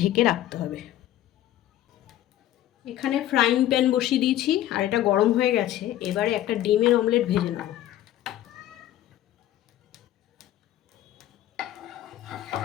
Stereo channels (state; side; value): quieter; right; 13.0 dB